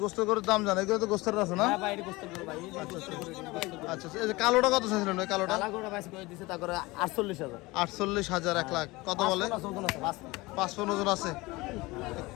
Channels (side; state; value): right; quieter; 21.9 dB